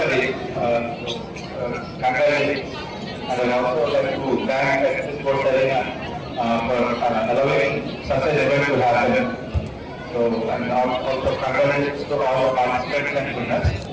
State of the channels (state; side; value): identical; both; correlation 1.00